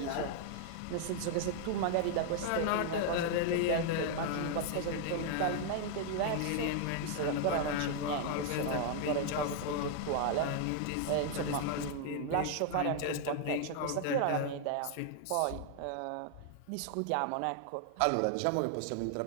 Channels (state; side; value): different; both; correlation 0.00